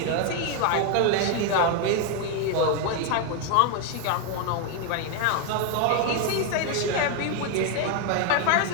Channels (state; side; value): different; both; correlation 0.01